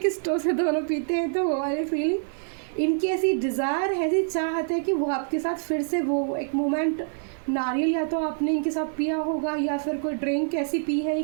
स्ट्रॉ से दोनों पीते हैं, तो वो वाली फीलिंग इनकी ऐसी डिज़ायर है, ऐसी चाहत है कि वो आपके साथ फिर से वो एक मोमेंट, नारियल या तो आपने इनके साथ पिया होगा या फिर कोई ड्रिंक ऐसी पी है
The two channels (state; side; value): silent; left; digital silence